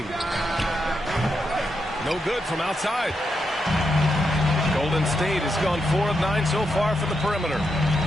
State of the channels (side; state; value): both; normal; correlation 0.83